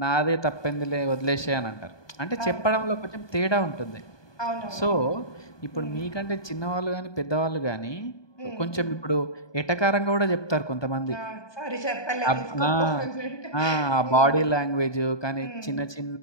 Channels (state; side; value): late; right; 1.2 ms